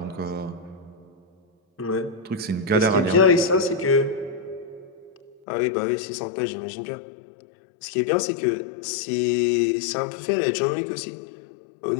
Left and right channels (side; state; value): right; drops out; at 5.4 s